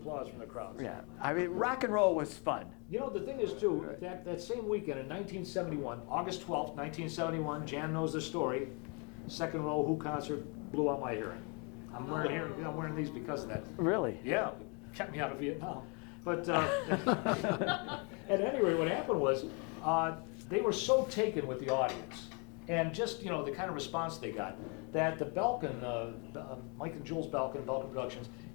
from the crowd. Yeah. I mean, rock and roll was fun. You know, the thing is, too, that same weekend in 1971, August 12th, 1971, Jan knows the story, second row Who concert blew out my hearing. I'm wearing these because of that. Really? Yeah, kept me out of Vietnam. But at any rate, what happened was they were so taken with the audience and just, you know, the kind of response they got that the Belkin, Mike and Jules Belkin Productions,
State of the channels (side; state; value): right; quieter; 34.1 dB